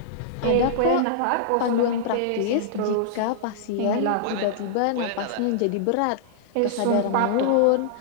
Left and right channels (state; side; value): different; both; correlation -0.02